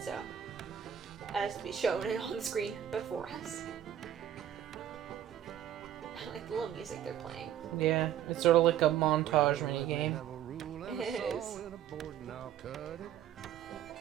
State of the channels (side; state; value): left; quieter; 10.8 dB